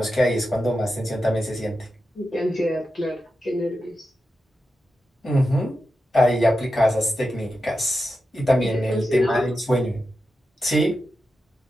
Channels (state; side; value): normal; both; correlation 0.90